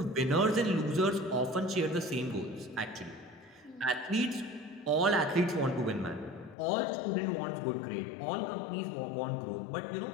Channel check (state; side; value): drops out; right; at 6.6 s